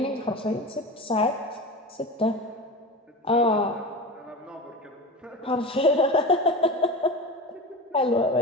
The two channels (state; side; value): normal; both; correlation 0.28